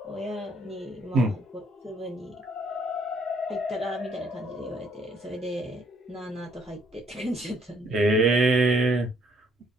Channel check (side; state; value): both; normal; correlation 0.66